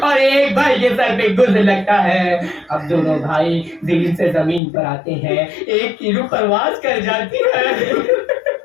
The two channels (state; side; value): drops out; right; at 4.6 s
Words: ایک بھائی کے سر پہ گرز لگتا ہے. اب دونوں بھائی دل سے زمین پر آتے ہیں ایک کی روح پرواز کر جاتی ہے